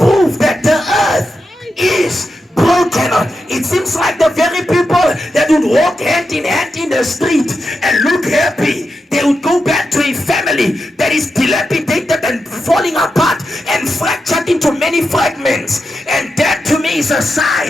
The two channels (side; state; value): both; normal; correlation 0.88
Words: that the earth is broken. It seems like the very people that would walk hand in hand in the street and look happy, they would go back to a family that is dilapidated and falling apart and fractured into many fragments, and that to me is a